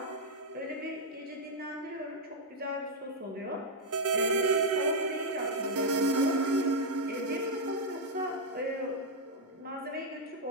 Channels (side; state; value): both; normal; correlation -0.01